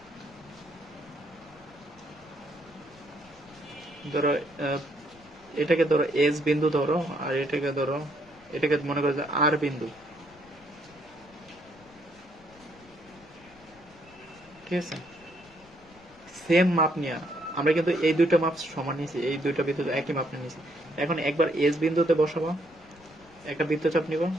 ধরো এটাকে ধরো এস বিন্দু ধরো, আর এটাকে ধরো, এটাকে মনে করো যে আর বিন্দু, ঠিক আছে। সেম মাপ নিয়ে আমরা কিন্তু এই দুইটা মাপ সমান নিয়েছি, এই দুইটা বৃত্ত একই মাপ নিয়েছি। এখন একবার এস বিন্দুতে বসাবো, একটা বৃত্তচাপ নিব,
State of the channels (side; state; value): left; noise; rumble, 26 dB below the sound